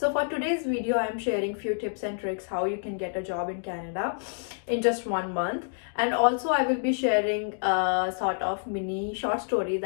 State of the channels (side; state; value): right; silent; digital silence